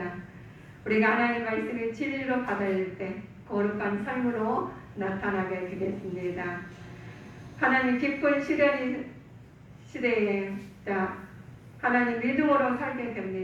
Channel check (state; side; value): identical; both; correlation 1.00